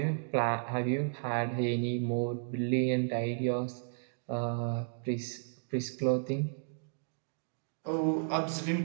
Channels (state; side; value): silent; left; digital silence